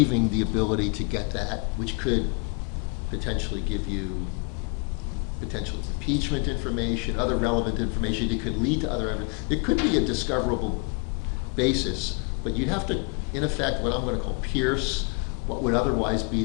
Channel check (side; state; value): right; quieter; 37.0 dB